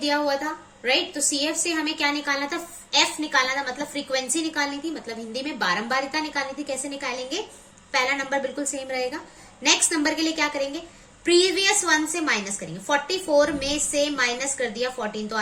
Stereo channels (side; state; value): both; identical; correlation 1.00